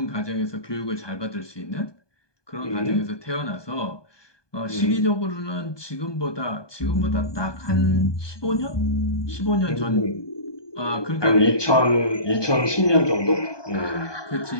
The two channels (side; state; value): right; late; 1.2 ms